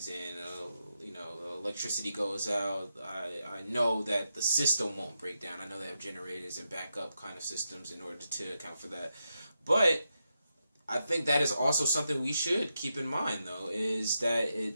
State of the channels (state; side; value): inverted; both; correlation -0.86